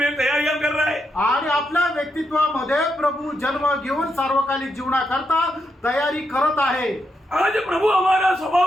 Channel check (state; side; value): normal; both; correlation 0.82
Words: तैयारियां कर रहा है। आणि आपल्या व्यक्तित्वामध्ये प्रभू जन्म घेऊन सार्वकालिक जीवनाकरता तयारी करत आहे। आज प्रभु हमारा